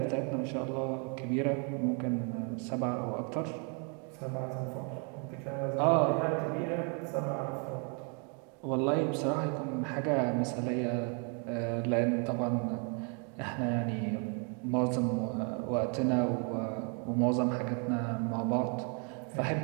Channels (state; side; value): quieter; left; 38.2 dB